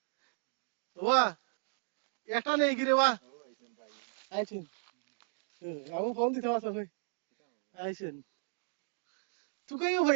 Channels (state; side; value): silent; left; digital silence